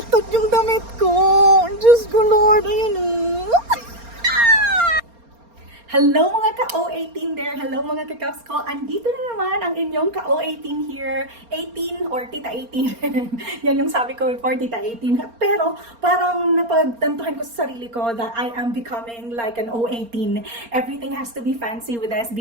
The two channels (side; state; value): left; late; 4.3 ms